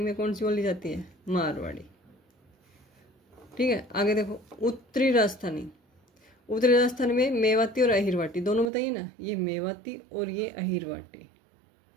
में कौन सी बोली जाती है? मारवाड़ी। ठीक है, आगे देखो उत्तरी राजस्थानी। उत्तरी राजस्थान में मेवाती और अहिरवाटी दोनों बताइए ना, ये मेवाती और ये अहिरवाटी।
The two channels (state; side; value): drops out; left; at 8.7 s